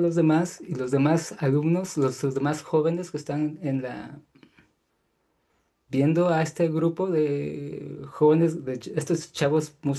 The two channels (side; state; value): both; identical; correlation 1.00